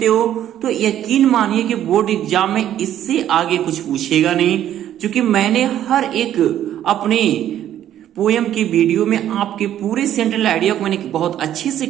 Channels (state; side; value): quieter; left; 11.4 dB